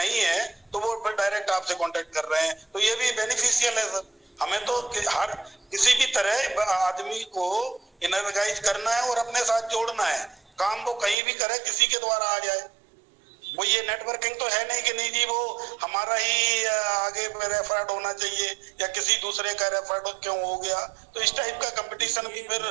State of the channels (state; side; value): drops out; left; at 11.2 s